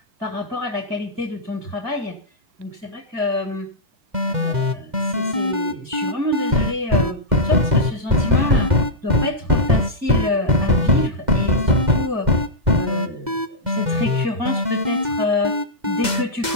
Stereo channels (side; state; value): left; late; 2.1 ms